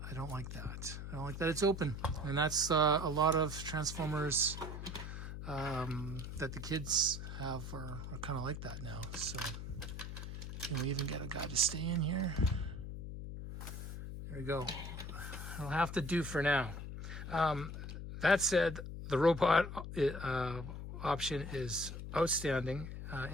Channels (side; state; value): left; noise; hum, 7 dB below the sound